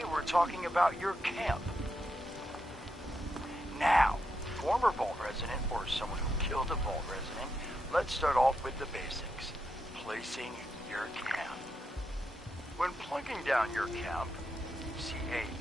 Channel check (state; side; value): normal; both; correlation 0.84